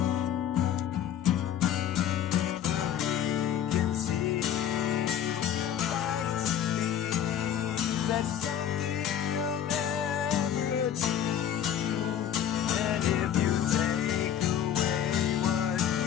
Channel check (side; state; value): right; quieter; 9.8 dB